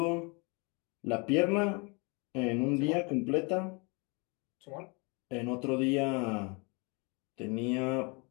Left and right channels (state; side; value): quieter; right; 31.3 dB